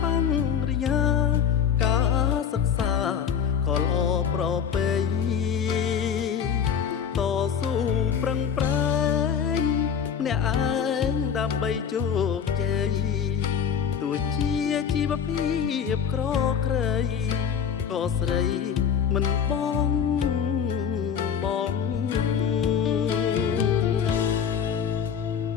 បញ្ញញ្ញាការសិក្សាក៏ល្អប្រពៃតស៊ូប្រឹងប្រែងម្នាក់ឯងដើម្បីជោគជ័យទោះជាជីវភាពក្រក្រៃក៏ស្រីមិនបង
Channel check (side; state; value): right; quieter; 7.7 dB